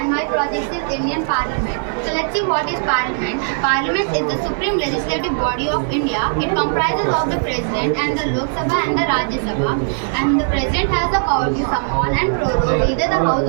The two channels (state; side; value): silent; left; 67 dB below the other